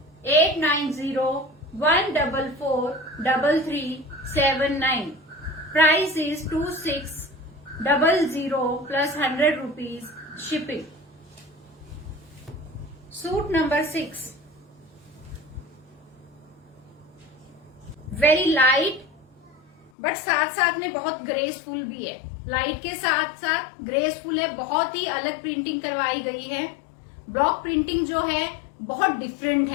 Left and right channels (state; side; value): drops out; right; at 19.9 s